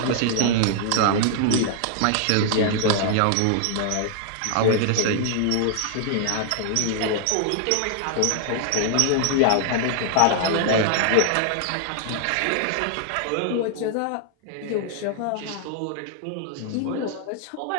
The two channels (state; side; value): different; both; correlation -0.01